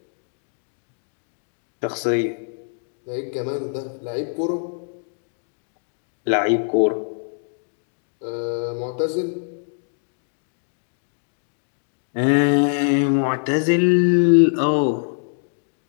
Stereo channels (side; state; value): right; silent; digital silence